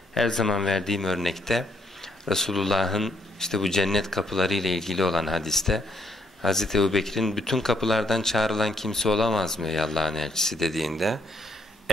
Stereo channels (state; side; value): normal; both; correlation 0.72